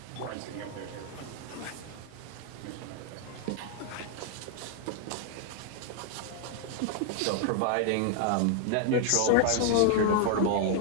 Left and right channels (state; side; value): different; both; correlation 0.00